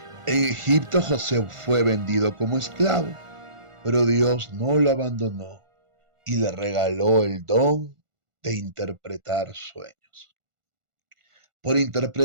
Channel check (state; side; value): late; left; 1.4 ms